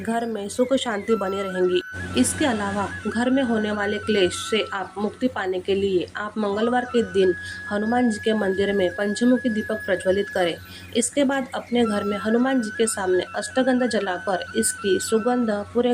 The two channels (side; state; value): both; identical; correlation 1.00